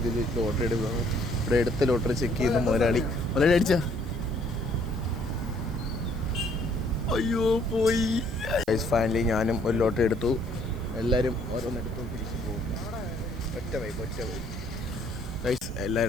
ലോട്ടറി എടുക്കുന്നു. ഇവിടെ എടുത്ത ലോട്ടറി ചെക്ക് ചെയ്യുന്ന മുതലാളി അടിച്ച അയ്യോ പോയി. ഫൈനലി ഞാനും ഒരു ലോട്ടറി എടുത്തു. എല്ലാവരും ഓരോന്നെടുത്തു തിരിച്ചു പോകുന്നു. ഒറ്റ വൈബ്. ഗൈസ്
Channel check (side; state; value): right; noise; hiss, 26 dB below the sound